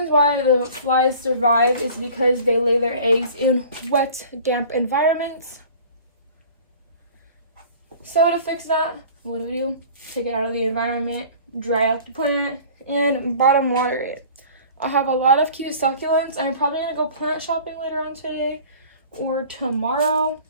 why the flies survive is because they lay their eggs in wet, damp environments. So to fix that, what do? Take it out of the environment, dry out the plant, and bottom water it. I have a lot of cute succulents. I'm probably going to go plant shopping later on today or tomorrow.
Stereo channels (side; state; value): both; inverted; correlation -0.45